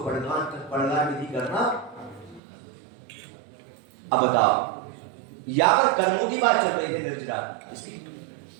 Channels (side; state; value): left; drops out; at 2.4 s